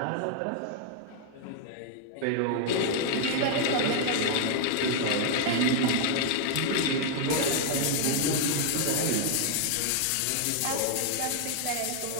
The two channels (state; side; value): different; both; correlation 0.00